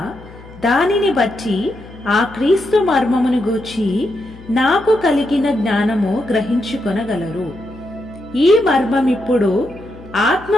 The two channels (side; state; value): left; noise; hum, 20 dB below the sound